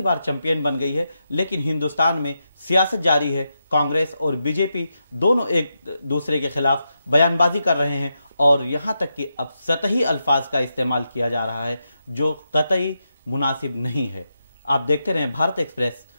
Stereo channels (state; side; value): inverted; both; correlation -0.86